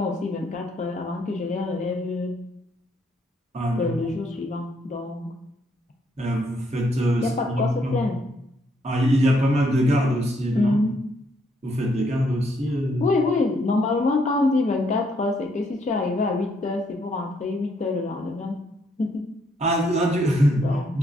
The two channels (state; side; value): normal; both; correlation 0.72